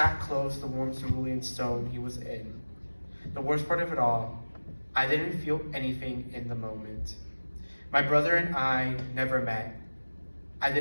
close to the warm cerulean stone he was in. The worst part of it all, I didn't feel anything in the moment. My brother and I never met. I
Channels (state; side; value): inverted; both; correlation -1.00